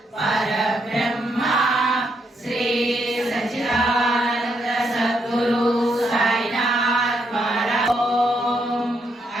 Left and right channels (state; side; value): normal; both; correlation 0.77